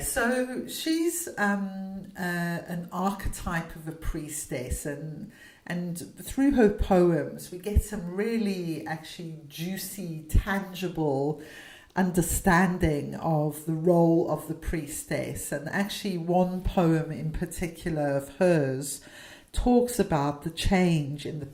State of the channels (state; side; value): identical; both; correlation 1.00